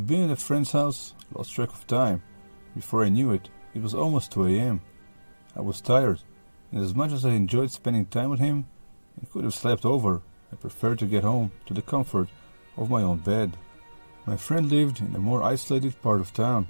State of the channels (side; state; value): both; inverted; correlation -1.00